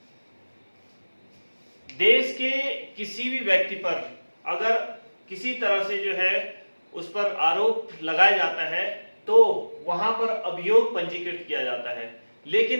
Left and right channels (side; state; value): both; inverted; correlation -1.00